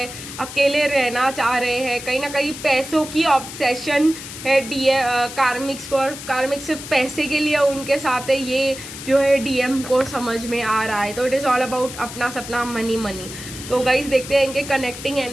अकेले रहना चाह रहे हैं। कहीं ना कहीं पैसों की ऑब्सेशन है कार्मिक्स को, और कार्मिक्स सिर्फ पैसे के लिए उनके साथ है, ये जो है डीएम को समझ में आ रहा है। तो इट इज़ ऑल अबाउट अपना सपना, मनी मनी। तो गाइस देखते हैं इनके कनेक्टिंग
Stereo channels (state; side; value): noise; left; hiss, 11 dB below the sound